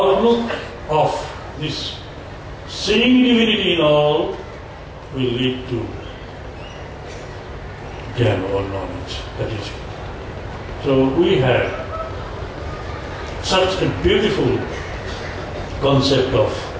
of this seeing divinity in all will lead to jnana or knowledge. That is it. So we have such a beautiful concept of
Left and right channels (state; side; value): identical; both; correlation 1.00